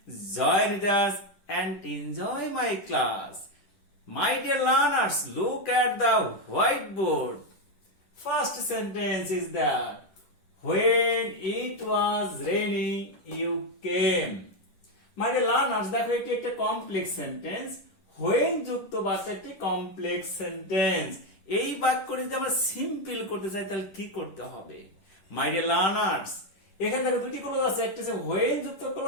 join with us and enjoy my class. My dear learners, look at the whiteboard. First sentence is that when it was raining, you came. My dear learners, দেখো এটি একটা complex sentence. when যুক্ত বাক্য একটি complex sentence. এই বাক্যটি যদি আমরা সিম্পল করতে চাই তাহলে কি করতে হবে? মাই ডিয়ার লার্নার্স, এখানে দেখো দুটি ক্লোজ আছে, একটা হচ্ছে when যুক্ত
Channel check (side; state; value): right; late; 10 ms